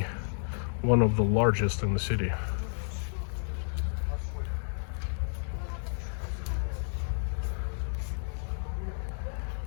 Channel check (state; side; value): silent; right; 57 dB below the other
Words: one of the largest in the city.